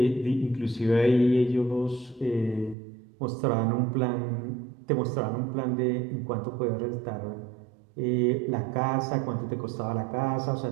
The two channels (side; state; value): left; drops out; at 2.8 s